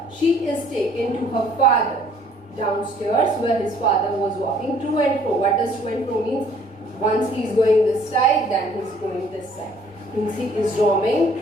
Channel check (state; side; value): normal; both; correlation 0.59